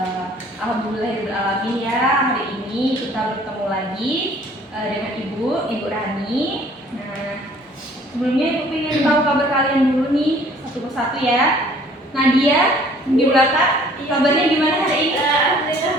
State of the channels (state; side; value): normal; both; correlation 0.55